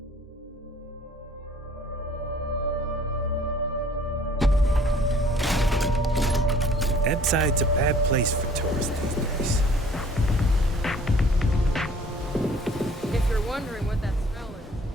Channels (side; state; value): both; normal; correlation 0.54